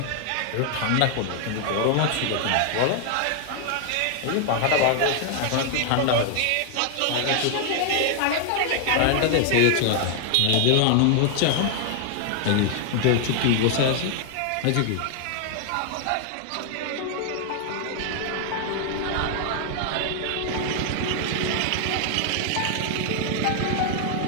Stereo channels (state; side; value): different; both; correlation 0.00